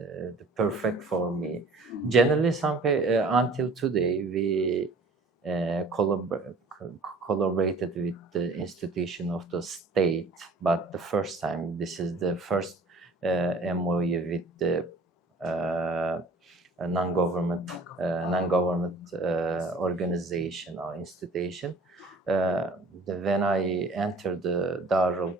perfect for me. Generally, until today we collaborated with the institution of the state, but the first time, this is the first MOU with the non-government organization or institution. When I entered the Darul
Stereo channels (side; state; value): left; quieter; 3.2 dB